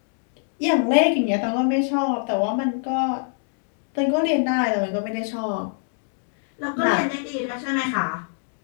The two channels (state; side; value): silent; right; digital silence